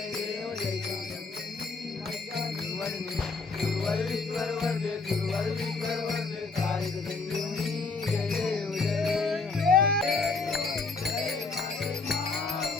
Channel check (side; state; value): right; quieter; 4.2 dB